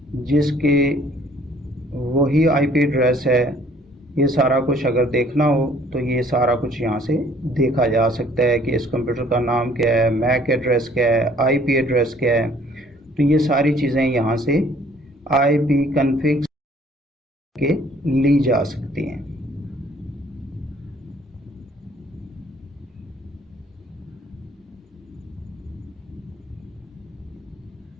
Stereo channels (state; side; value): normal; both; correlation 0.58